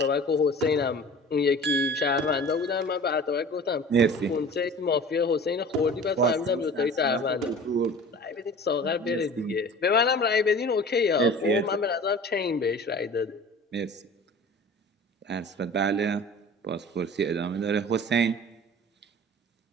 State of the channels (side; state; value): both; normal; correlation 0.42